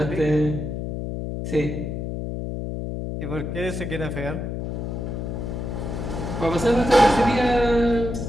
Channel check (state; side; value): noise; left; hum, 4 dB below the sound